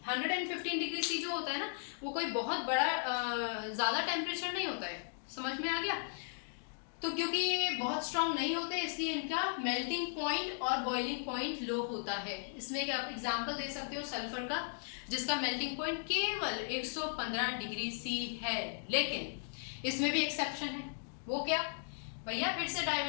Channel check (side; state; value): right; silent; digital silence